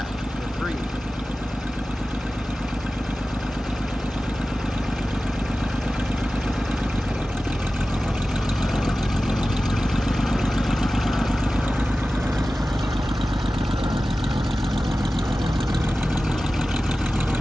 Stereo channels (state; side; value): normal; both; correlation 0.95